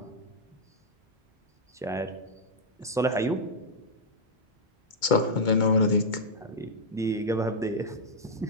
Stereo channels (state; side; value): normal; both; correlation -0.04